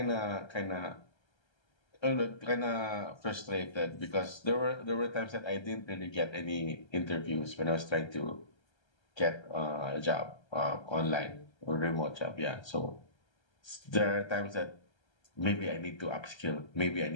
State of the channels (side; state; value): right; late; 1.3 ms